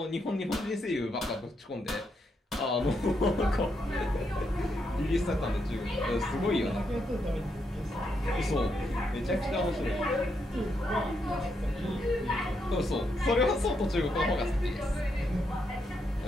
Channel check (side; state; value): both; normal; correlation 0.80